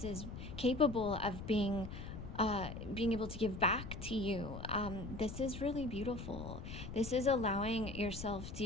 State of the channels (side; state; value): left; noise; rumble, 9 dB below the sound